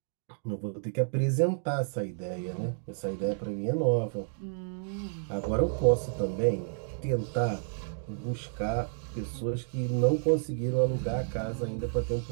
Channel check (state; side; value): silent; left; digital silence